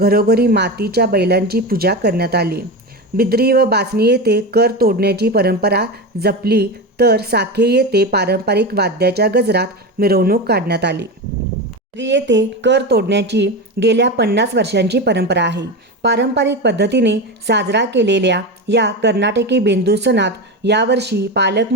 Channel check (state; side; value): normal; both; correlation 0.20